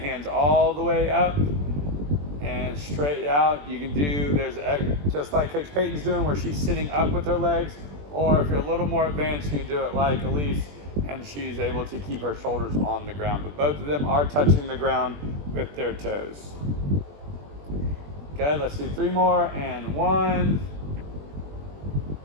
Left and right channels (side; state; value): left; late; 21 ms